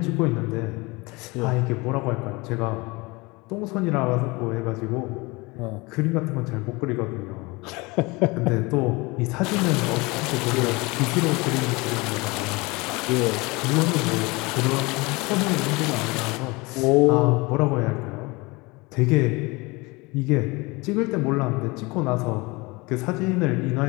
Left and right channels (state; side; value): quieter; right; 24.8 dB